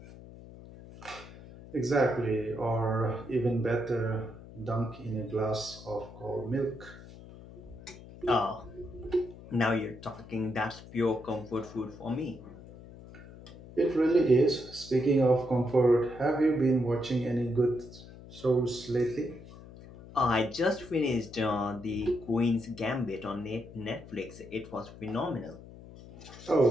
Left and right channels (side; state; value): left; noise; hum, 17 dB below the sound